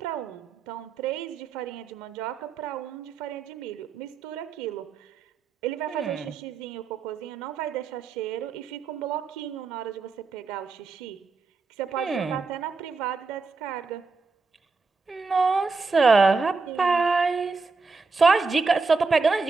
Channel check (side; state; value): left; quieter; 4.3 dB